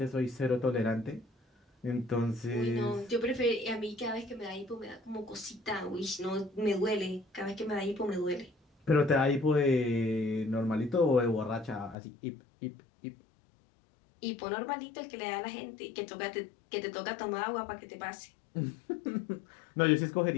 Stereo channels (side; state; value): right; drops out; at 12.0 s